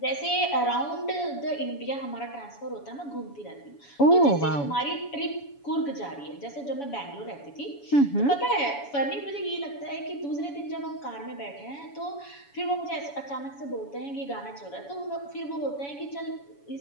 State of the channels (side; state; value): right; late; 7.1 ms